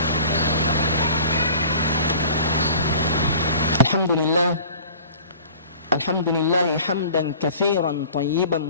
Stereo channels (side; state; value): both; inverted; correlation -0.44